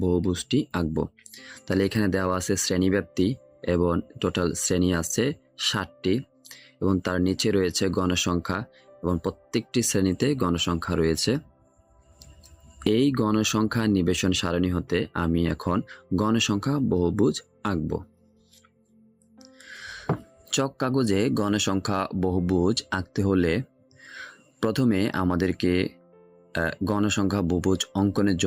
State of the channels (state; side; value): identical; both; correlation 1.00